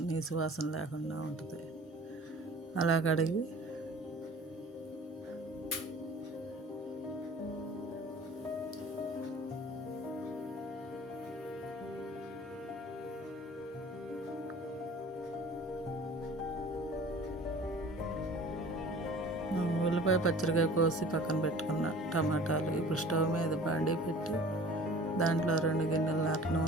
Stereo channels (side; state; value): both; normal; correlation 0.45